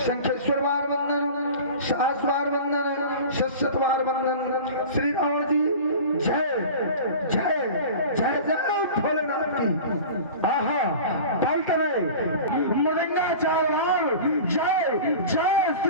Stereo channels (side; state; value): both; inverted; correlation -0.36